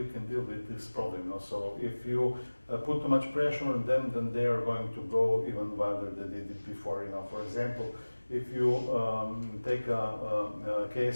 can deal with this problem. You know? So if you put too much pressure on them, then they are going to go even wilder than they did before. You know, for example, if you take a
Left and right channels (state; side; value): inverted; both; correlation -1.00